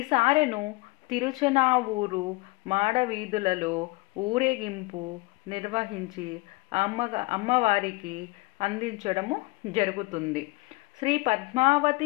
సారెను తిరుచనావూరు మాడవీధులలో ఊరేగింపు నిర్వహించి అమ్మవారికి అందించడము జరుగుతుంది. శ్రీ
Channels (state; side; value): quieter; right; 24.2 dB